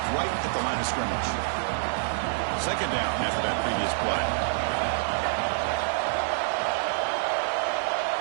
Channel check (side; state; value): left; silent; 60 dB below the other